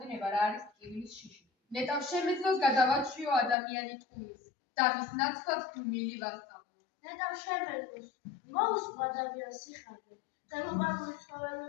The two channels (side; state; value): right; drops out; at 3.6 s